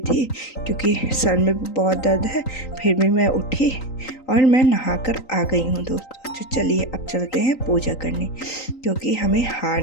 थी क्योंकि सर में बहुत दर्द है। फिर भी मैं उठी और मैं नहाकर आ गई हूँ दोस्तों। तो चलिए अब चलते हैं पूजा करने, क्योंकि हमें हार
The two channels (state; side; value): late; right; 3.9 ms